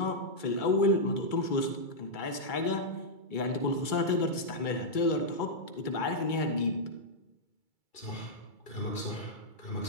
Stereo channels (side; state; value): right; late; 2.3 ms